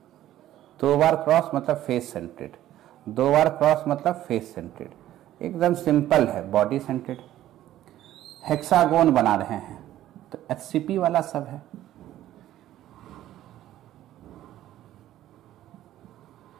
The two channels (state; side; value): quieter; left; 13.3 dB